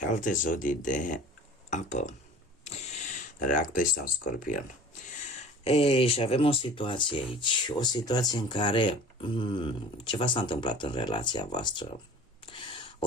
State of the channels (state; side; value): normal; both; correlation 0.43